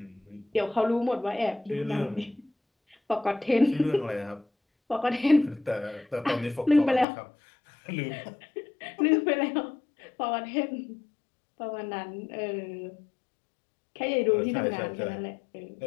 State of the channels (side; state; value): right; drops out; at 7.1 s